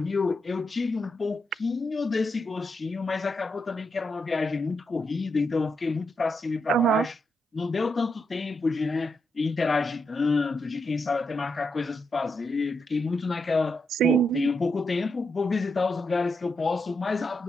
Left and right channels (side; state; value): both; normal; correlation 0.83